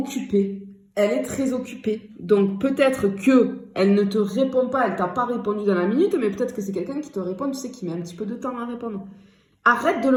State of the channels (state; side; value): identical; both; correlation 1.00